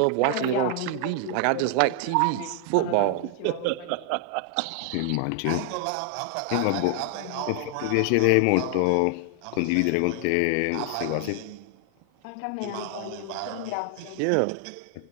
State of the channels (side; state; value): both; different; correlation 0.00